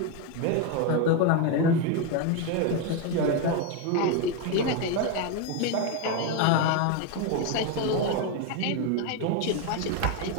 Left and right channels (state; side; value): different; both; correlation 0.02